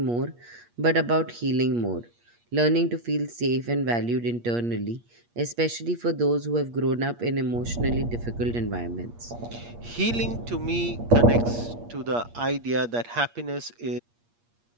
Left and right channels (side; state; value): left; late; 8.5 ms